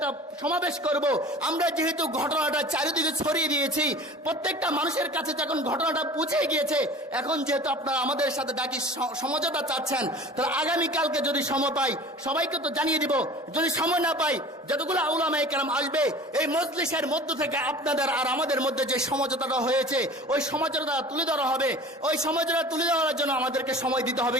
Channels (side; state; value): both; normal; correlation 0.41